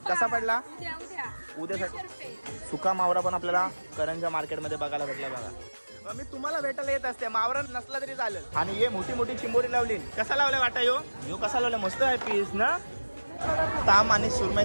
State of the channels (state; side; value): inverted; both; correlation -1.00